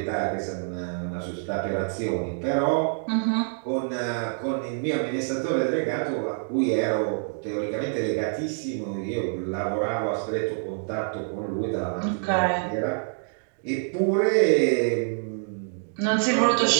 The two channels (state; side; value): silent; left; digital silence